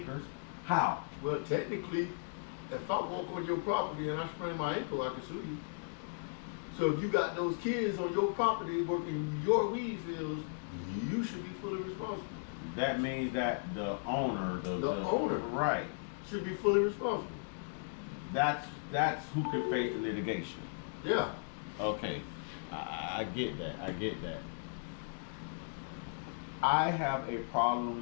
how? Well, technically, if I walk on your property and I sprain my ankle, I can sue you. So if you got those kids on your property working your weed fields, you should be fully responsible. That means that the owner, the owner, right, should be fully responsible. That's who could face the litigation. Yeah. Okay, I get that. I get that. I have a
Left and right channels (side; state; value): right; silent; digital silence